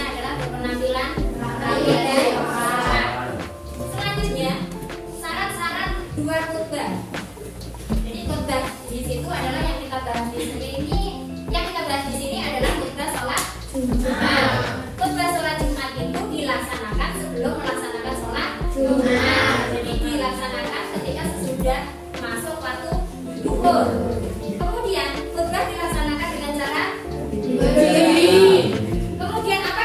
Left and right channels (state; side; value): identical; both; correlation 1.00